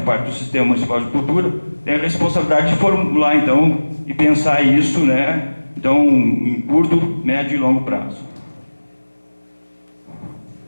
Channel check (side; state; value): both; inverted; correlation -1.00